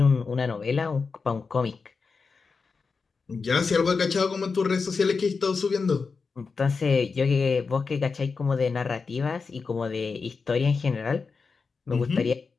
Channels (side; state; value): right; quieter; 4.8 dB